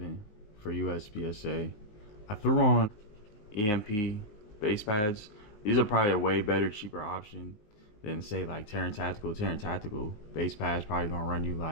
for USPSA. I threw on EMP base pads. These are probably a way better, cheaper option than say like Terran Tactical. Terran Tactical base pads probably gonna run you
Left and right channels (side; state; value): right; late; 19 ms